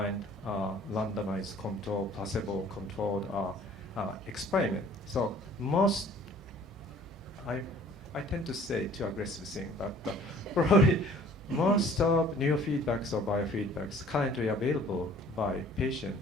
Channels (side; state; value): both; normal; correlation 0.53